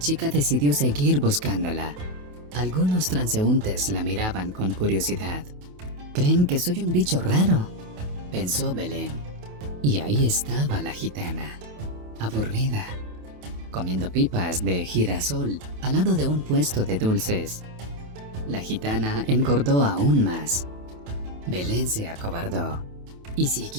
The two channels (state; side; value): late; left; 28 ms